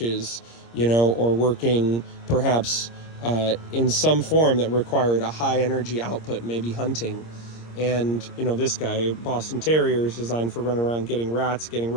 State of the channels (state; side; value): late; right; 26 ms